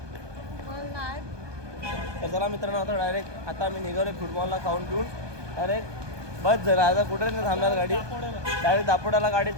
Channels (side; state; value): left; late; 1.2 ms